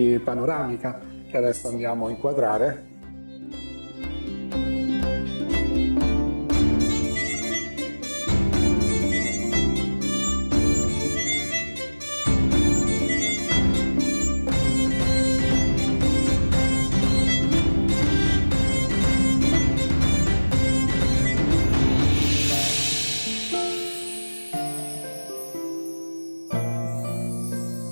panoramica che adesso andiamo a inquadrare.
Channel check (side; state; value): both; inverted; correlation -1.00